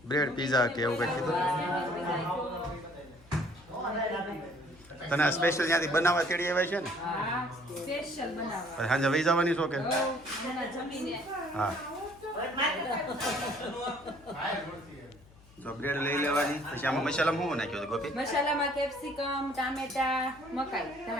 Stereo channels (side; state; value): left; noise; hum, 25 dB below the sound